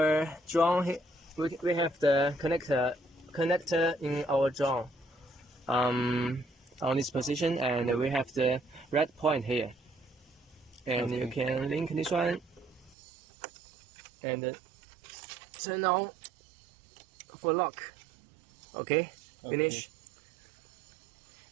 drone, we have the connector in our drone on this position, and we have the red point here. And you can link this one and turn on for lock. Okay, finish.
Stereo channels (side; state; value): left; drops out; at 13.0 s